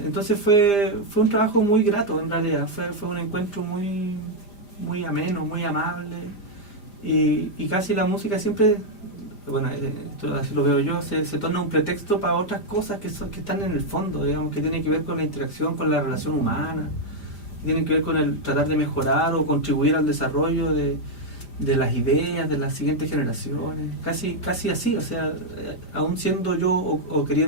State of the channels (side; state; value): right; late; 5.0 ms